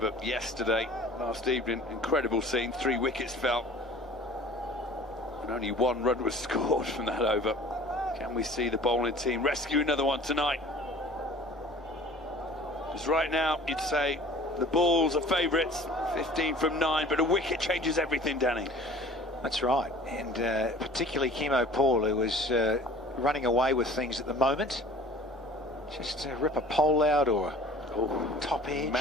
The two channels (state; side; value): normal; both; correlation 0.46